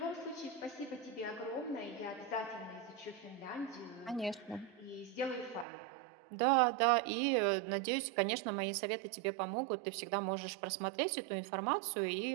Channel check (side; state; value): left; drops out; at 5.7 s